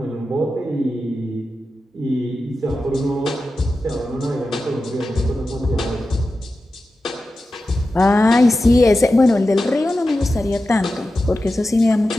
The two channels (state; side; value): normal; both; correlation 0.92